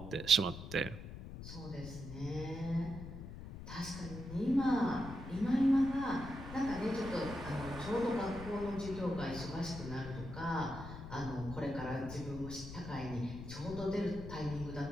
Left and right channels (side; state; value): left; noise; rumble, 10 dB below the sound